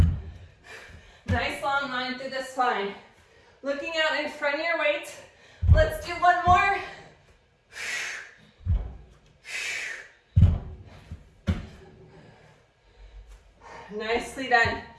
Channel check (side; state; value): both; identical; correlation 1.00